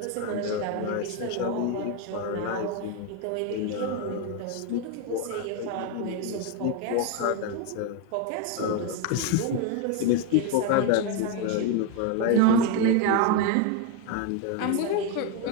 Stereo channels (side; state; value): both; different; correlation 0.02